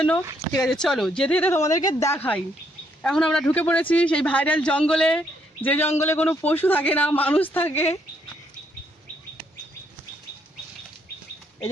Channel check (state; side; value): normal; both; correlation 0.72